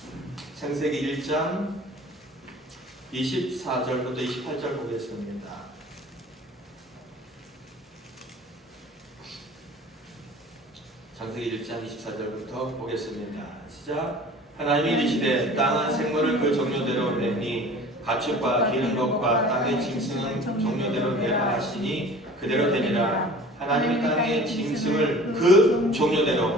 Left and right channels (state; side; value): normal; both; correlation 0.44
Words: 창세기 1장 24절부터 28절 보겠습니다. 창세기 1장 24절부터 보겠습니다. 시작. 하나님이 이르시되 땅은 생물을 그 종류대로 내니 가축과 기는 것과 땅의 짐승은 종류대로 내라 하시니 그대로 되니라. 하나님이 땅의 짐승을 그